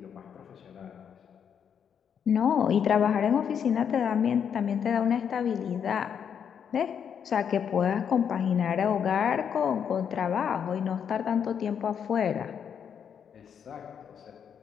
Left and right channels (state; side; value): quieter; right; 7.8 dB